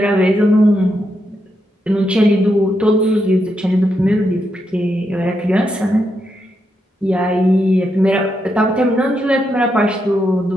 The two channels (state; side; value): normal; both; correlation 0.82